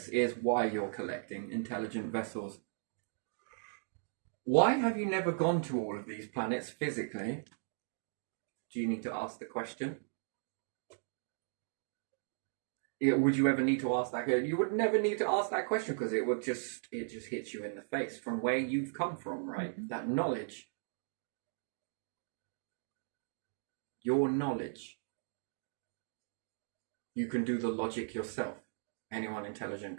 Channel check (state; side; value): silent; left; digital silence